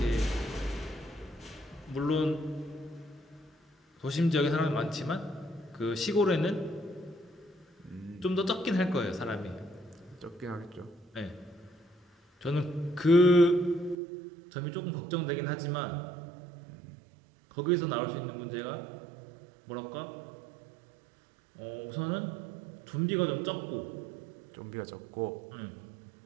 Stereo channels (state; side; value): drops out; left; at 14.0 s